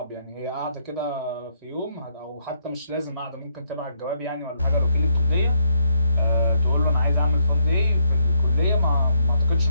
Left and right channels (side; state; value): both; inverted; correlation -0.74